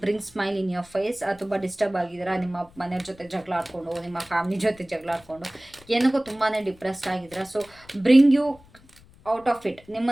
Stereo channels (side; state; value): left; noise; rumble, 26 dB below the sound